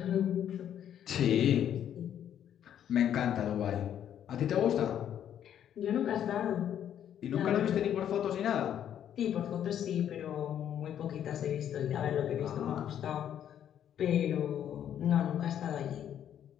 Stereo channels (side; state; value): right; quieter; 9.9 dB